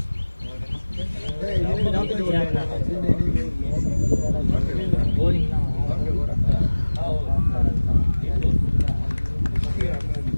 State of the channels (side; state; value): both; inverted; correlation -1.00